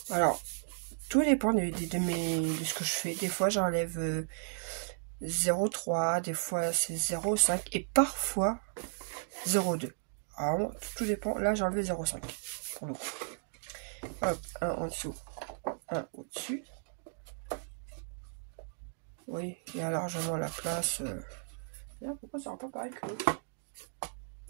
Alors, tout dépend de ce que je fais. Des fois, j'enlève 0,3, des fois c'est 0,5 et parfois 0,2. Alors, tout dépend. Là, j'ai enlevé 0,5 pour le coup. Hop, un en dessous, un au-dessus. Oui, il y a largement la place. Là, pourquoi ça rend pas pareil que l'autre?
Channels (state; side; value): silent; left; digital silence